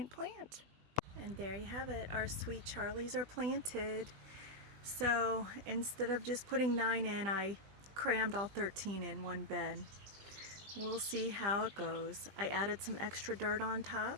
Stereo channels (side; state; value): left; late; 20 ms